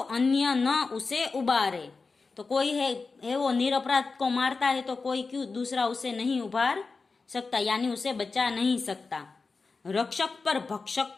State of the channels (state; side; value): quieter; right; 4.2 dB